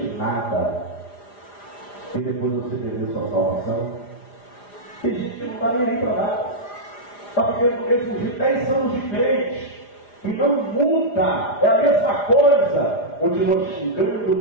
nada, e depois você perder sua salvação? Tem gente que não está nem aí para nada. Está vivendo o mesmo de 10 anos de crente e não muda, é a mesma coisa. Continua xingando,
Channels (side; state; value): right; late; 4.9 ms